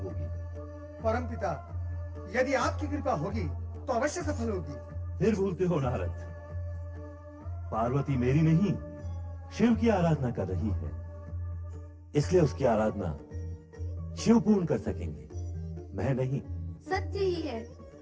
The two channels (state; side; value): identical; both; correlation 1.00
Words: परमपिता, यदि आपकी कृपा होगी तो अवश्य सफल होगी। फिर भूलते हो नारद, पार्वती मेरी नहीं शिव की आराधना कर रही है, इसलिए उसकी आराधना शिव पूर्ण कर सकेंगे, मैं नहीं। सत्य ही है,